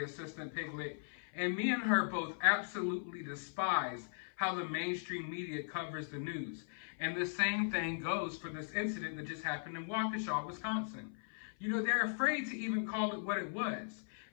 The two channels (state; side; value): silent; right; 52 dB below the other